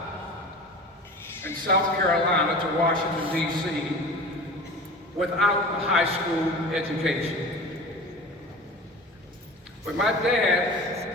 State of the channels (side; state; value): both; normal; correlation 0.36